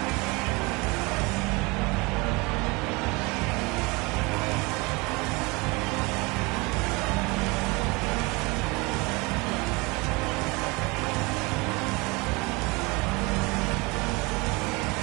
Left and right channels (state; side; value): quieter; left; 25.9 dB